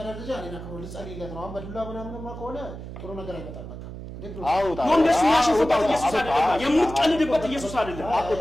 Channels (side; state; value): right; noise; hum, 11 dB below the sound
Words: ደረጃ እኔና ክብሩ ልጸልይለት ነው አሁን በዱላ ምናምንማ ከሆነ ጥሩ ነገር አይመጣም በቃ ወንደሱ ያሸፈበት ኢየሱስ አይደለም የምትቀልድበት ኢየሱስ አይደለም